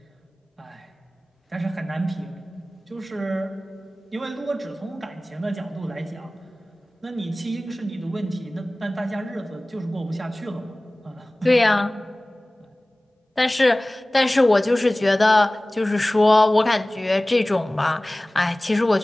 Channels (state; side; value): normal; both; correlation 0.98